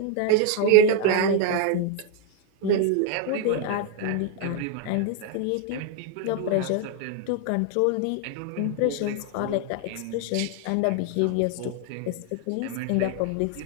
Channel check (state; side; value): different; both; correlation 0.01